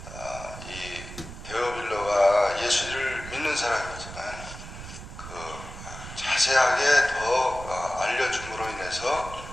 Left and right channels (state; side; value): noise; right; rumble, 12 dB below the sound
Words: 이 데오빌로가 예수를 믿는 사람이지만 그 자세하게 더 알려줌으로 인해서